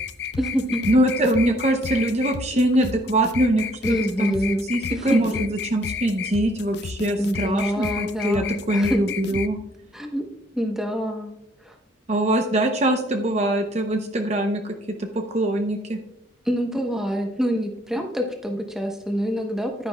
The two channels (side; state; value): both; normal; correlation 0.64